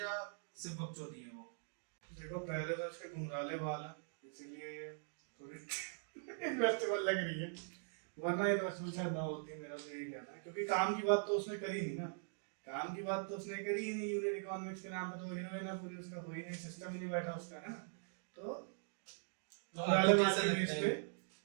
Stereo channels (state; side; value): silent; left; digital silence